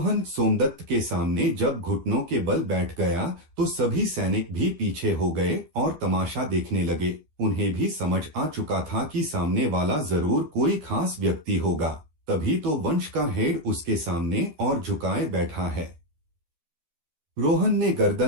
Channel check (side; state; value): left; late; 12 ms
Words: सोमदत्त के सामने जब घुटनों के बल बैठ गया तो सभी सैनिक भी पीछे हो गए और तमाशा देखने लगे। उन्हें भी समझ आ चुका था कि सामने वाला जरूर कोई खास व्यक्ति होगा, तभी तो वंश का हेड उसके सामने और झुकाए बैठा है। रोहन ने